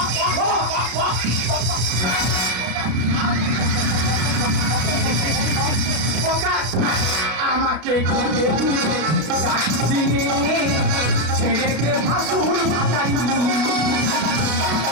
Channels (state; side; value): late; left; 32 ms